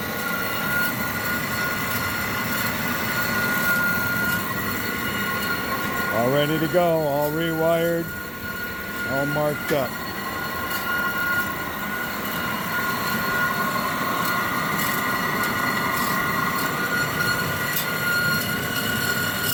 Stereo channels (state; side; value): identical; both; correlation 1.00